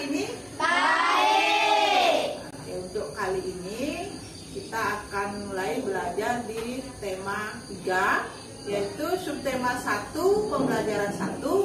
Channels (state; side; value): identical; both; correlation 1.00